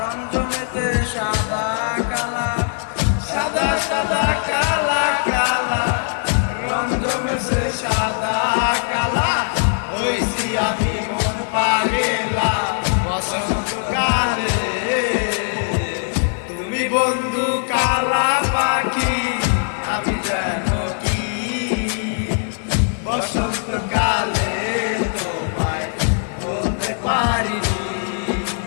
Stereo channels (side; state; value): right; silent; 58 dB below the other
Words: জমেতে সাদা কালা সাদা সাদা কালা কালা রং জমেছে সাদা কালা হইছি আমি মন পাগেলা বসন্তকালে তুমি বন্ধু কালা পাখি আমি জানো কি বসন্তকালে তোমায় বলতে পারিনি